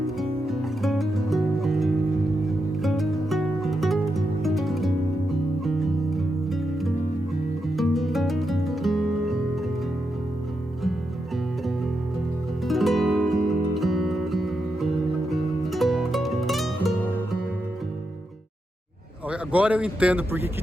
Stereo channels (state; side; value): normal; both; correlation 0.85